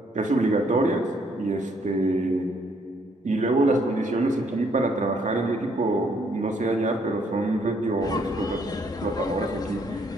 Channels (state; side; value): normal; both; correlation 0.68